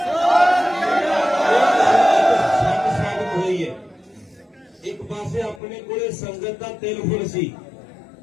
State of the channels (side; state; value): right; drops out; at 5.6 s